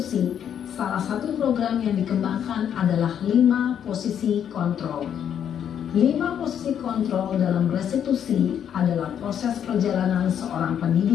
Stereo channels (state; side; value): quieter; right; 9.0 dB